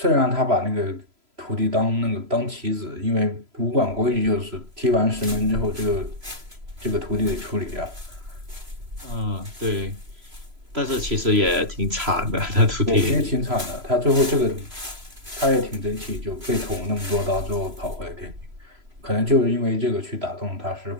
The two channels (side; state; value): left; late; 3.0 ms